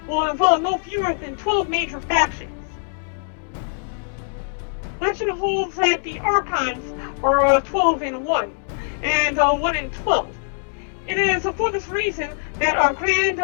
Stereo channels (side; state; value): right; silent; digital silence